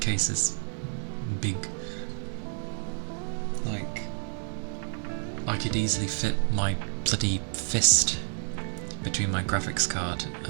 is big. Like, I could easily fit my bloody fist between my graphics card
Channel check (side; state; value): left; silent; 58 dB below the other